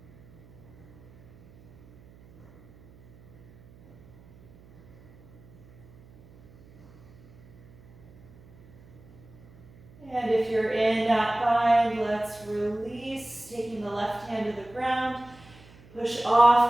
And if you're in that bind, let's release, taking the left hand to the ground. Push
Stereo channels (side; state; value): right; noise; hum, 23 dB below the sound